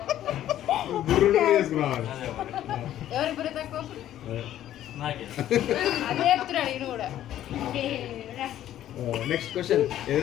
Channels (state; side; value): quieter; right; 12.2 dB